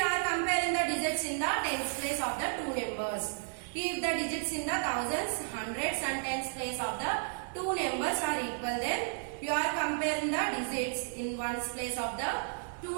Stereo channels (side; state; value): left; silent; 56 dB below the other